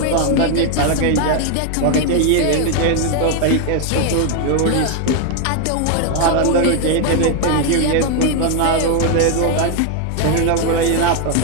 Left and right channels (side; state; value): both; different; correlation 0.01